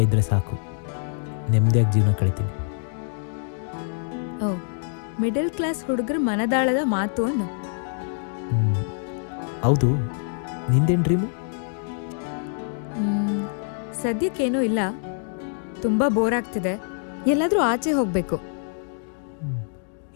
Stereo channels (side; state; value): right; silent; digital silence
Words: ಇದ್ದರೆ ಸಾಕು. ನೆಮ್ಮದಿಯಾಗಿ ಜೀವನ ಕಳಿತೀನಿ. ಓ, ಮಿಡಲ್ ಕ್ಲಾಸ್ ಹುಡುಗರ ಮನದಾಳದ ಮಾತು ಅನ್ನು. ಹೌದು, ನಿಂದೇನು ಡ್ರೀಮು? ಸದ್ಯಕ್ಕೇನೂ ಇಲ್ಲ, ತುಂಬ ಬೋರ್ ಆಗ್ತಿದೆ, ಎಲ್ಲಾದರೂ ಆಚೆ ಹೋಗಬೇಕು.